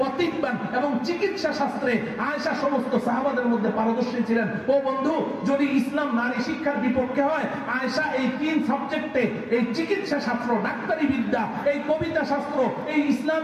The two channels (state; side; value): identical; both; correlation 1.00